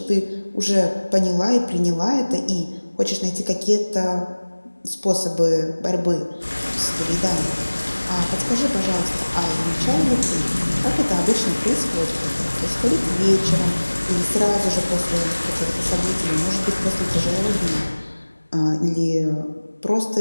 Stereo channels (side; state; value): both; inverted; correlation -1.00